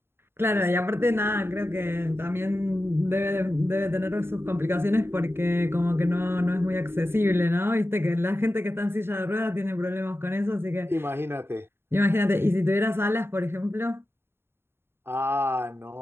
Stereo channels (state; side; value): late; left; 0.11 ms